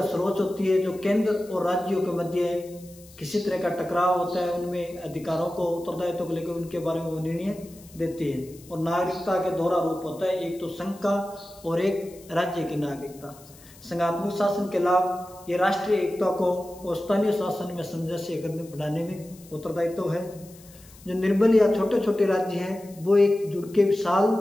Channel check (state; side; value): noise; left; hiss, 23 dB below the sound